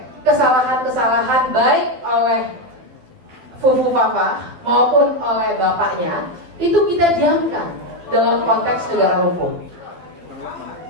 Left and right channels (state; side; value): late; left; 12 ms